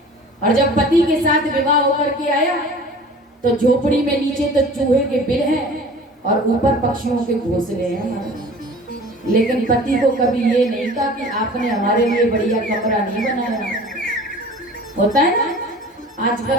और जब पति के साथ विवाह होकर के आया तो झोपड़ी में नीचे तो चूहे के बिल हैं और ऊपर पक्षियों के घोंसले हैं। लेकिन पति को कभी ये नहीं कहा कि आपने हमारे लिए बढ़िया कमरा नहीं बनाया। होता है ना,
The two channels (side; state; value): both; normal; correlation 0.43